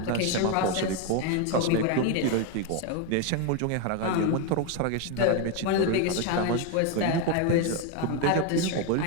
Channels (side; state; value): both; different; correlation 0.02